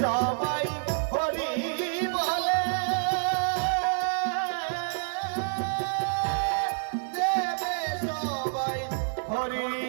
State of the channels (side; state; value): left; silent; digital silence